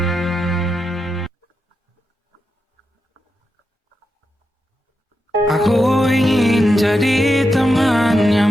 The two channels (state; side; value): normal; both; correlation 0.87